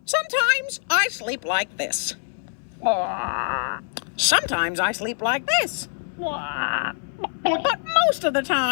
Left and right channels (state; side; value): silent; right; 62 dB below the other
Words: Sometimes I sleep like this. Sometimes I sleep like this. But most of the